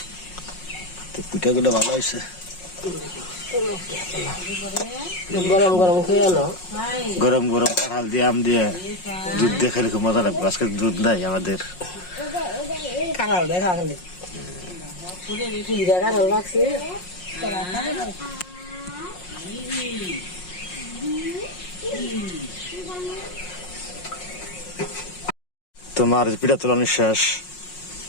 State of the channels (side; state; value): right; late; 5.5 ms